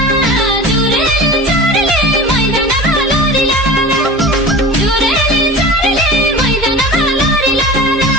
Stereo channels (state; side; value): normal; both; correlation 0.35